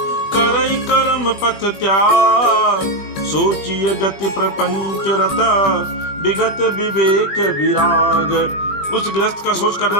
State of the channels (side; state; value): right; late; 20 ms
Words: करई कर्म पथ त्याग। सोचिए गति प्रपंच रत, विगत विवेक विराग। उस गृहस्थ का सोच